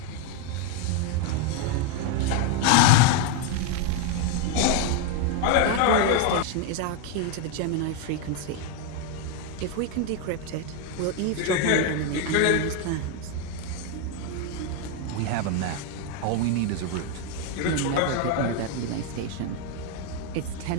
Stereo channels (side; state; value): both; different; correlation 0.01